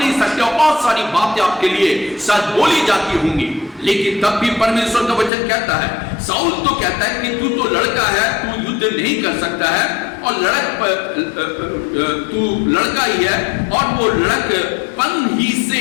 सकते, और बहुत सारी बातें आपके लिए शायद बोली जाती होंगी। लेकिन तब भी परमेश्वर का वचन कहता है, साउल तो कहता है कि तू तो लड़का है, तू युद्ध नहीं कर सकता है, और तू लड़का ही है, और वो लड़कपन ही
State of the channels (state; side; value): drops out; right; at 5.3 s